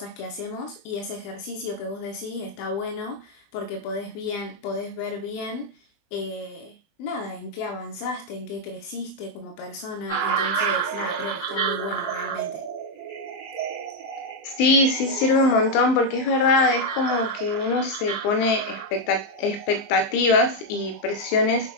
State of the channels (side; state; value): right; late; 20 ms